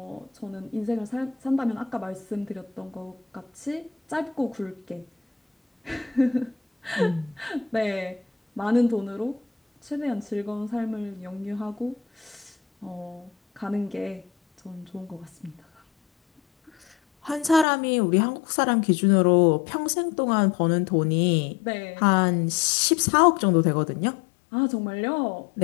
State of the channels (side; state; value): right; drops out; at 17.7 s